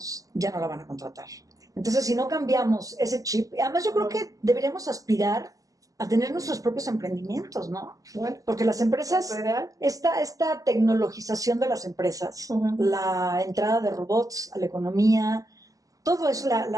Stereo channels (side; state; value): left; late; 0.17 ms